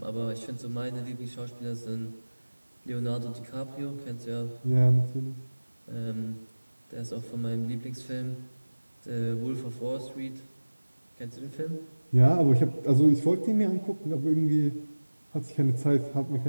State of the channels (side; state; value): both; inverted; correlation -1.00